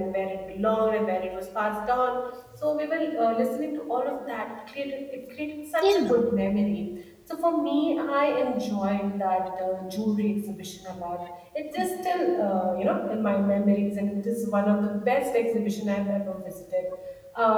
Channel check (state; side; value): identical; both; correlation 1.00